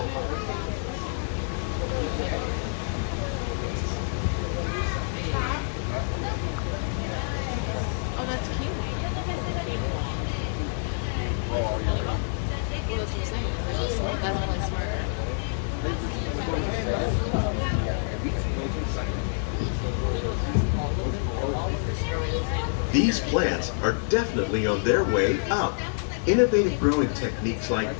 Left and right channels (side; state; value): right; silent; 60 dB below the other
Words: These plants are definitely on their way up. Innovative growing techniques like